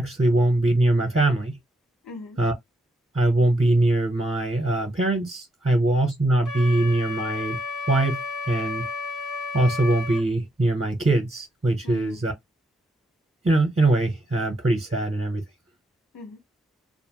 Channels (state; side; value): normal; both; correlation 0.79